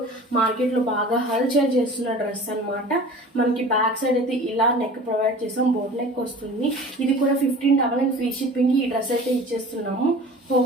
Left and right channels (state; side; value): normal; both; correlation 0.41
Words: మార్కెట్లో బాగా హల్చల్ చేస్తున్న డ్రెస్ అనమాట. మనకి బ్యాక్ సైడ్ అయితే ఇలా నెక్ ప్రొవైడ్ చేసాం, బోట్ నెక్ వస్తుంది. ఇది కూడా 15 ఫ్రీ షిప్పింగ్కి ఈ డ్రెస్ అయితే ఇచ్చేస్తున్నాము.